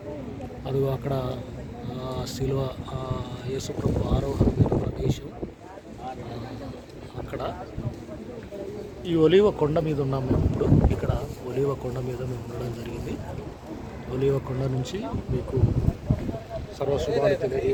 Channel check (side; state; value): both; identical; correlation 1.00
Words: అది అక్కడ శిలువ యేసుప్రభు ఆరోహణ ప్రదేశం. అక్కడ ఈ ఒలీవ కొండ మీద ఉన్నాం మేము ఇప్పుడు. ఇక్కడ ఒలీవ కొండ మీద మేము ఉండడం జరిగింది. ఒలీవ కొండ నుంచి మీకు సర్వశుభాలు